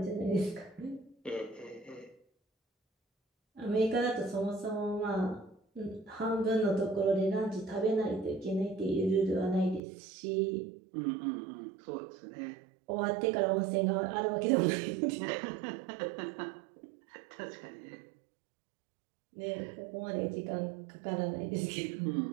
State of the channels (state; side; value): drops out; left; at 9.8 s